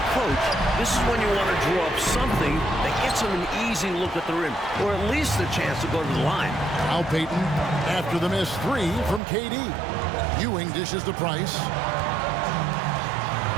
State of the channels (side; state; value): left; drops out; at 9.2 s